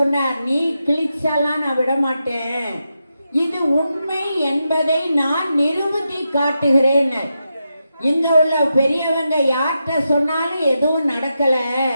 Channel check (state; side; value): inverted; both; correlation -0.87